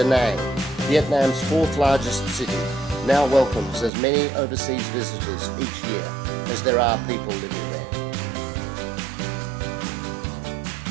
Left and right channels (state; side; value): drops out; left; at 3.9 s